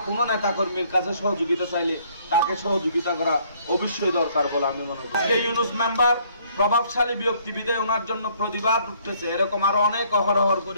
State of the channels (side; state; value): both; inverted; correlation -0.63